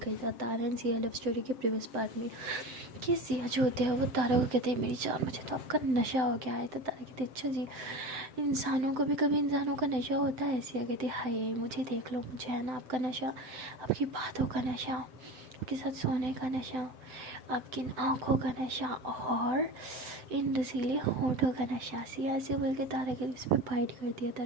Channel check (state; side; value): late; left; 7.8 ms